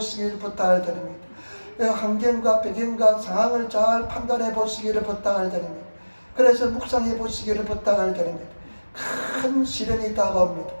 부탁을 드립니다. 환경과 배경과 상황을 잘 판단해 보시기를 부탁을 드립니다. 그래서 묵상해 보시기를 부탁을 드립니다. 큰 시련이 다가옵니다.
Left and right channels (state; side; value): inverted; both; correlation -1.00